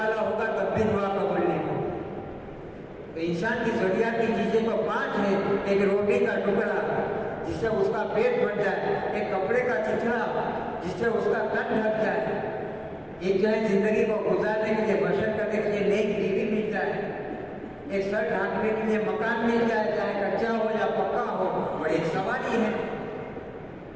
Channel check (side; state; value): both; identical; correlation 1.00